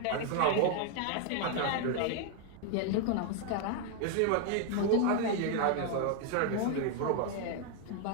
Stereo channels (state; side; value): different; both; correlation 0.00